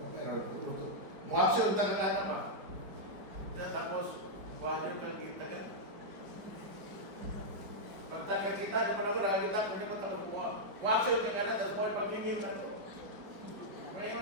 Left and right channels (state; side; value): late; left; 4.9 ms